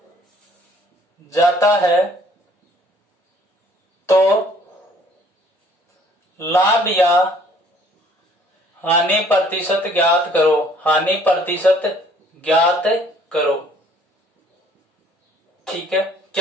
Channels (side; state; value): both; normal; correlation 0.58